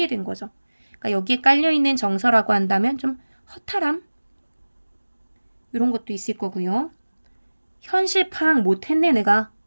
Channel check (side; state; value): both; inverted; correlation -1.00